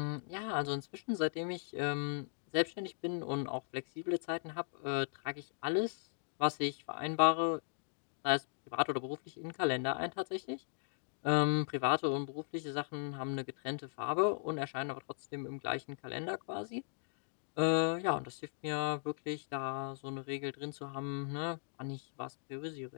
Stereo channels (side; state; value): right; silent; digital silence